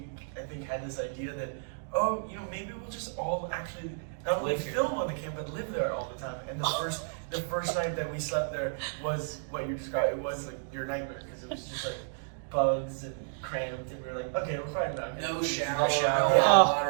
I think had this idea that maybe we'll just all actually not only Live here. film on the camp but live there all the time. And the first night that we slept there was what you described. It was like your nightmare because it was just like bugs and cramped, and we were like, okay, we're fine now. No shower, shower. no Yeah. hot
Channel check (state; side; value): silent; left; digital silence